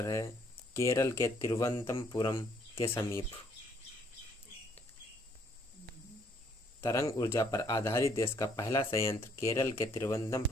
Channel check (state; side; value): normal; both; correlation 0.66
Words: है केरल के तिरुवनंतपुरम के समीप। तरंग ऊर्जा पर आधारित देश का पहला संयंत्र केरल के